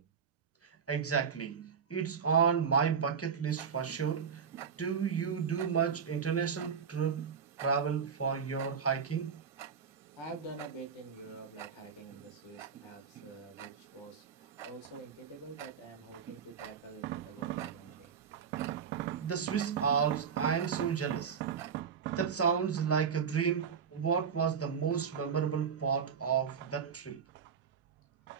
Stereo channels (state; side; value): quieter; left; 6.8 dB